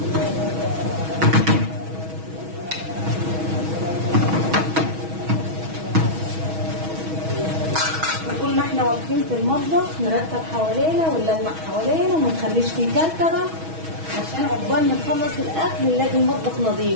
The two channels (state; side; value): late; left; 6.2 ms